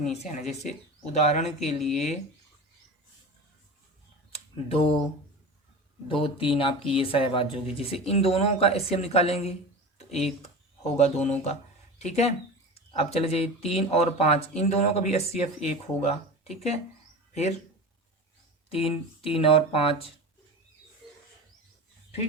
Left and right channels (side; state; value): both; normal; correlation 0.30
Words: है। जैसे उदाहरण के लिए 2 2 3 आपकी ये सहभाज्य होगी। जैसे इन दोनों का HCF निकालेंगे तो 1 होगा दोनों का, ठीक है। अब चले जाइए 3 और 5, इन दोनों का भी HCF 1 होगा, ठीक है। फिर 3 और 5,